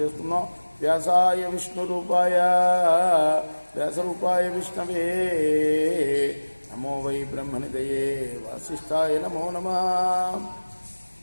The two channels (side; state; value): both; inverted; correlation -1.00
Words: వ్యాసాయ విష్ణు రూపాయ వ్యాసరూపాయ విష్ణవే నమో వై బ్రహ్మనిదయే వాసిష్ఠాయ నమో నమః.